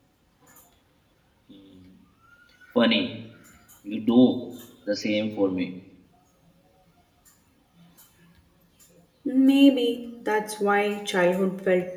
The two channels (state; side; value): identical; both; correlation 1.00